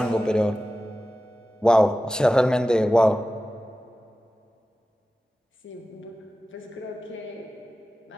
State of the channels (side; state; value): both; normal; correlation 0.95